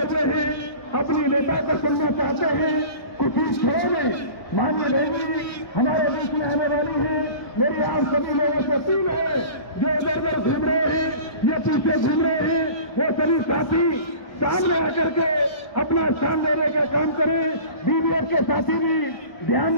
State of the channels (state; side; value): late; right; 1.2 ms